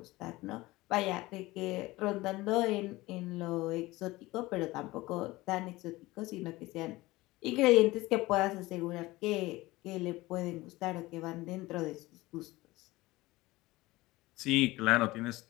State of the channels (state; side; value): quieter; right; 19.7 dB